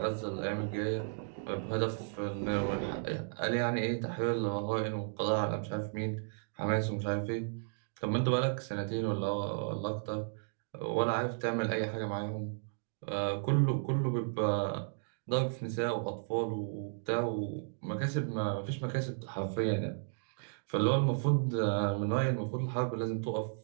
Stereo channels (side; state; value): left; silent; digital silence